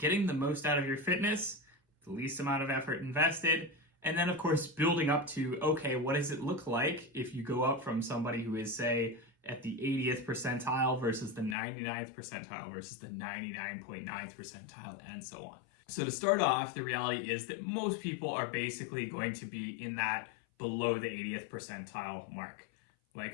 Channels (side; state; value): right; drops out; at 11.6 s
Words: the most out of your fitness, the least amount of effort invested, and then of course building up to, okay, what does it look like if you go up from somebody who is, say, at the 80th percentile versus the 99th percentile versus the 99.9th percentile and so on. So to start off, the reality is that most people are basically going to be in that below the 80th percentile mark.